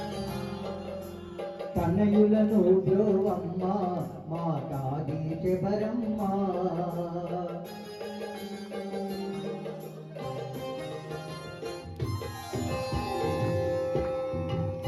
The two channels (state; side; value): identical; both; correlation 1.00